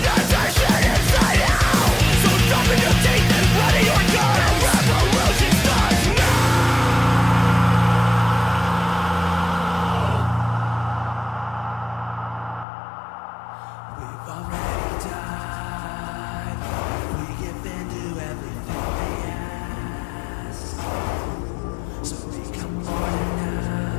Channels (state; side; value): drops out; right; at 12.7 s